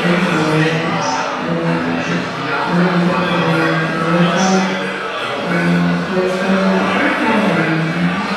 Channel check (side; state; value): both; identical; correlation 1.00